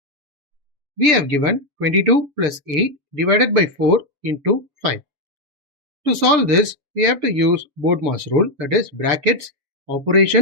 We have given 22 plus 8 divided by 4 into 5. To solve this, we have to use BODMAS rule, that is brackets,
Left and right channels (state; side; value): late; left; 7.1 ms